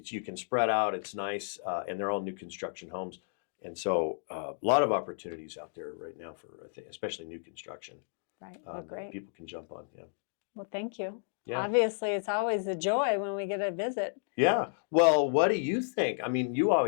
can spread out. It's nice, and they're all new construction homes. And so a lot of opportunities out there right now for, I think, especially new construction. Right. Well, great. People can jump on. Yeah. Well, thank you. Yeah. Obviously, it's always a joy when we get a visit. Yeah. Well, what do you think? I mean, you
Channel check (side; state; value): right; silent; digital silence